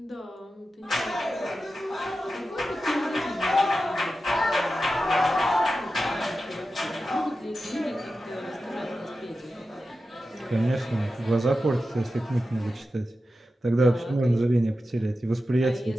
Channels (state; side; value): normal; both; correlation 0.92